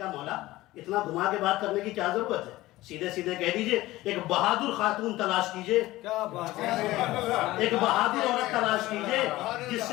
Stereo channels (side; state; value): right; quieter; 17.6 dB